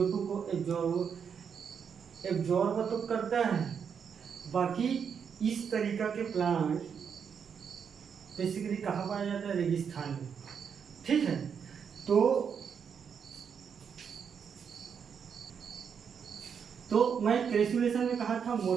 को एब्जॉर्ब तो करता है। बाकी इस तरीका के प्लांट बेसिकली कहाँ पाया जाता है? रेगिस्तान में। ठीक है, तो मैं क्रेसुलेशन में कहा था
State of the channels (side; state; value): left; quieter; 7.0 dB